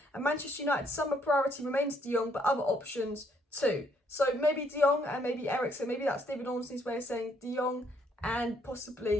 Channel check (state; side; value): normal; both; correlation 0.69